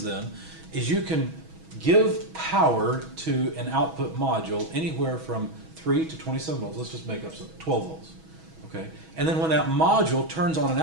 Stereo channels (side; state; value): left; late; 6.2 ms